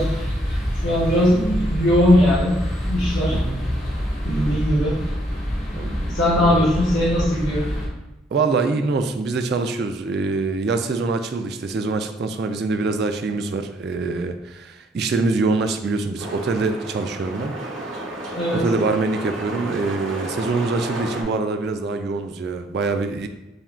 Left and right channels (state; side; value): normal; both; correlation 0.67